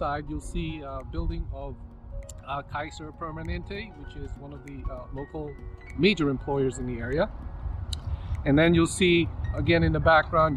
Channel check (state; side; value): identical; both; correlation 1.00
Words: you'll see a building of Kaiser Permanente, which is one of the local major employers in the area. And then you'll see again in the